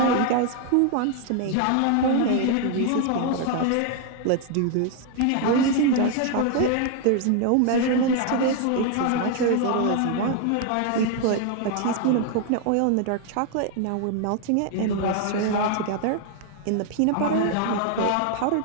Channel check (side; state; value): both; different; correlation 0.00